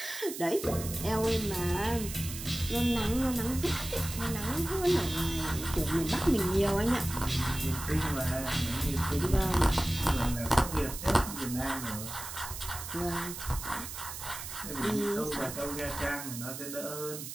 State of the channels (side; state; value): right; noise; hiss, 9 dB below the sound